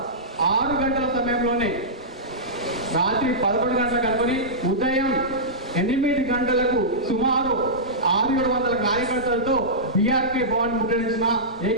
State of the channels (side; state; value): both; normal; correlation -0.15